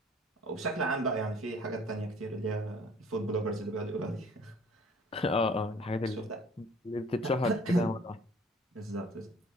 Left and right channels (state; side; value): normal; both; correlation 0.53